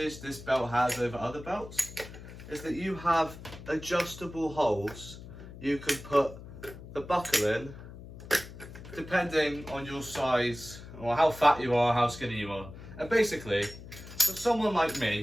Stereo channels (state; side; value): noise; left; hum, 14 dB below the sound